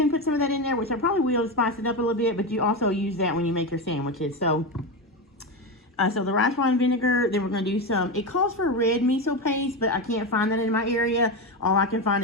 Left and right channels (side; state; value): both; normal; correlation 0.16